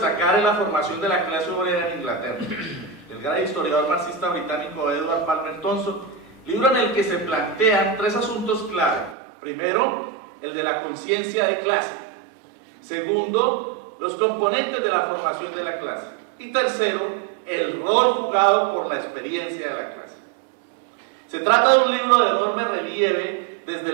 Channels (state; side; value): drops out; left; at 9.2 s